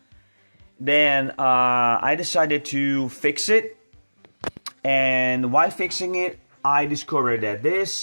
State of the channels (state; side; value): inverted; both; correlation -1.00